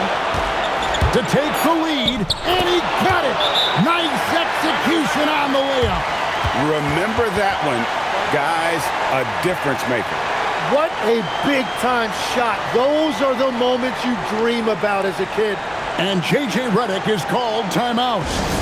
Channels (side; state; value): both; identical; correlation 1.00